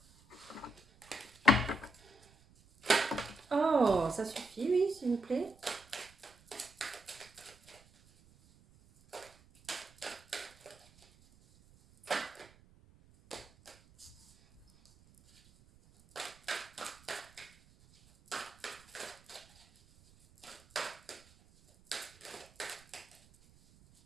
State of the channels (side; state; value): right; noise; rumble, 27 dB below the sound